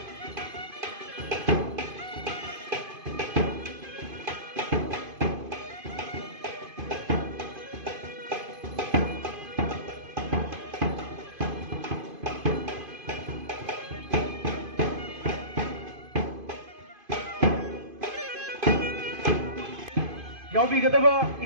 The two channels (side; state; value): left; late; 2.5 ms